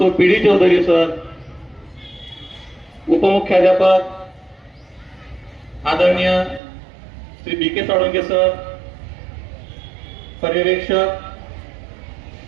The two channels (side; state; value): left; drops out; at 6.6 s